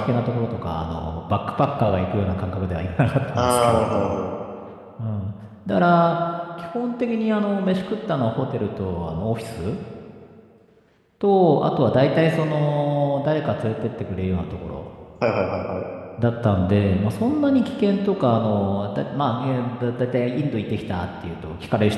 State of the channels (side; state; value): both; identical; correlation 1.00